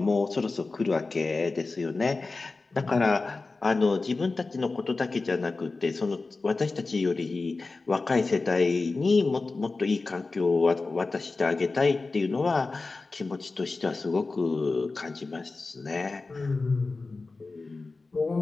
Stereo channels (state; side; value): quieter; right; 3.7 dB